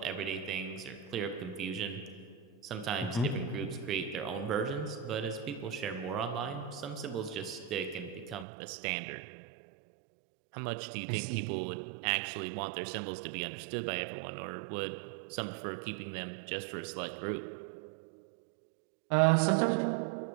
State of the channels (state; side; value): drops out; left; at 8.5 s